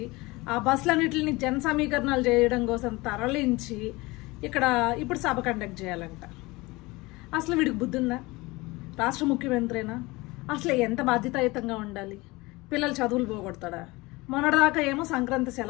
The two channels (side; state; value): right; quieter; 22.5 dB